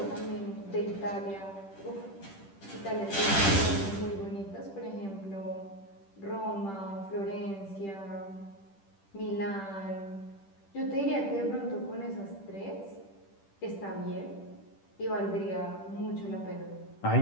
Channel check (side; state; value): right; late; 10 ms